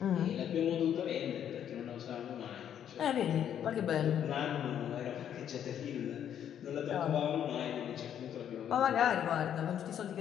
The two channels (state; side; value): quieter; right; 9.6 dB